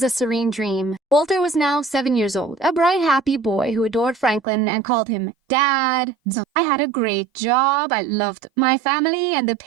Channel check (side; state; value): left; drops out; at 4.4 s